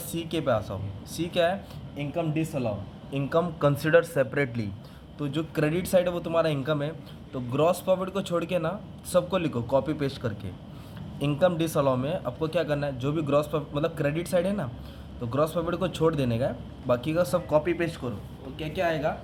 सी के पास आओ। सी क्या है? Income disallow, income consider separately. तो जो क्रेडिट साइड है वो तुम्हारा इनकम है। तो ग्रॉस प्रॉफिट को छोड़ के ना सबको लिखो कॉपी पेस्ट करके। इनकम डिसअलाउ में आपको क्या करना है, जो भी ग्रॉस प्रॉफिट मतलब क्रेडिट साइड है ना, तो ग्रॉस प्रॉफिट को छोड़ देने का है, बाकी का सब कॉपी पेस्ट करो। तो क्या क्या आएगा?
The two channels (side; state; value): both; identical; correlation 1.00